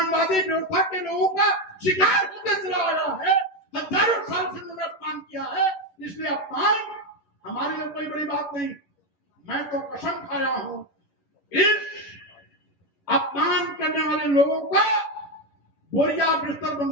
व्यवस्था के लोगों का शिकार होते चला आया है। हजारों साल से मैंने अपमान किया है, इसलिए अपमान हमारे लिए कोई बड़ी बात नहीं। मैं तो कसम खाया हूं इस अपमान करने वाले लोगों का बोरिया बिस्तर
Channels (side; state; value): right; late; 11 ms